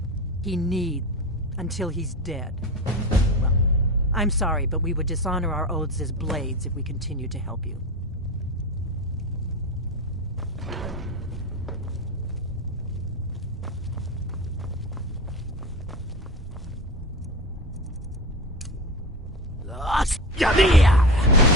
He need until he's dead. Well, I'm sorry, but we would dishonor our oaths as blades if we continued to help you.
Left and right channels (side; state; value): both; normal; correlation 0.24